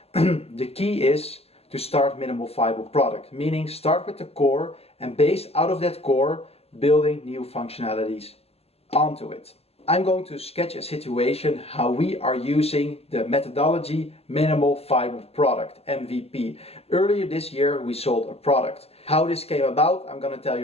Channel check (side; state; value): right; late; 0.29 ms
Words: The key is to start minimal viable product, meaning start with the core and base out of that core, building new functionalities onto it. I'm going to sketch a situation how we are using the methodology Minimal Viable Product, MVP. Earlier this year we sold a product. How this came about, I'm going to tell